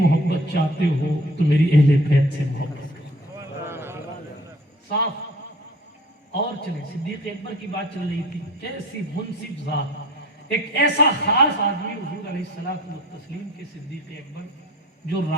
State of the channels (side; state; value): both; normal; correlation 0.46